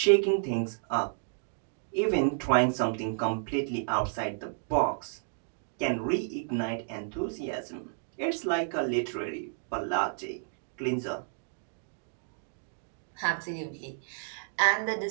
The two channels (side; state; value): left; silent; digital silence